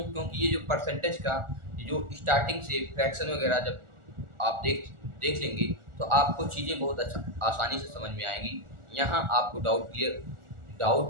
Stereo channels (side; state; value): left; late; 1.4 ms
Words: ये जो परसेंटेज का जो स्टार्टिंग से फ्रैक्शन वगैरह जब आप देख लेंगे तो आपको चीज़ें बहुत अच्छा आसानी से समझ में आएंगी। यहाँ आपको डाउट